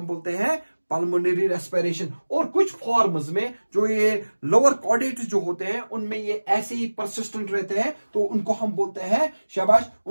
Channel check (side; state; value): both; inverted; correlation -1.00